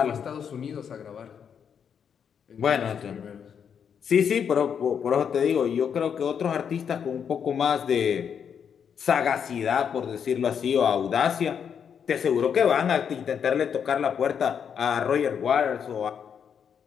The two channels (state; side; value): quieter; right; 7.5 dB